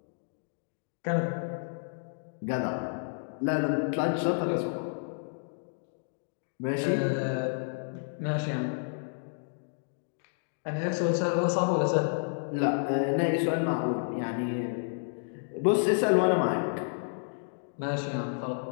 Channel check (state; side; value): silent; right; digital silence